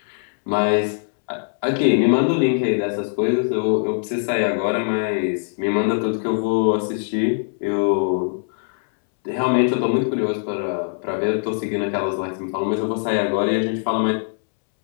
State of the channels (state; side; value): silent; right; 65 dB below the other